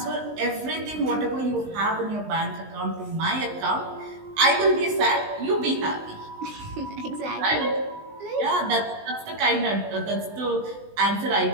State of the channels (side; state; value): left; late; 19 ms